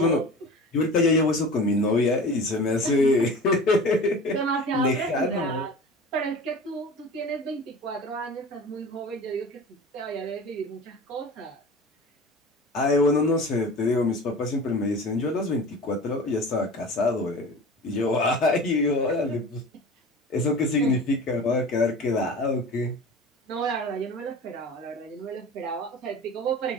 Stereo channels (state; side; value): normal; both; correlation 0.36